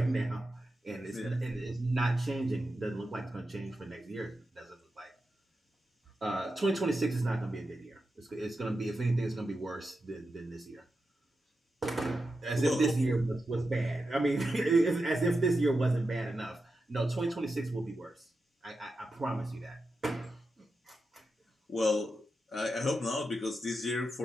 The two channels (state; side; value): normal; both; correlation 0.89